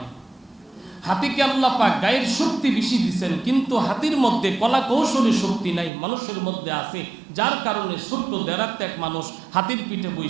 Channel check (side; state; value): left; drops out; at 5.9 s